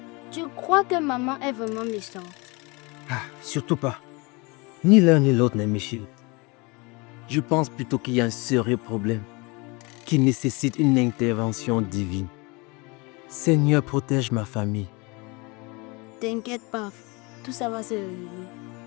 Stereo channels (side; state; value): right; quieter; 27.3 dB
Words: Tu crois que maman est vraiment méchante? Ah, surtout pas. Ni l'un ni l'autre n'est méchant. Je pense plutôt qu'il y a un sérieux problème qui nécessite une intervention divine. Seigneur, protège ma famille. T'inquiète pas, tout ça va se régler.